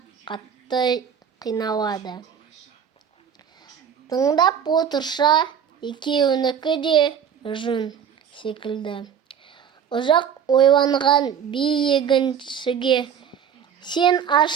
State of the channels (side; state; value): left; quieter; 7.9 dB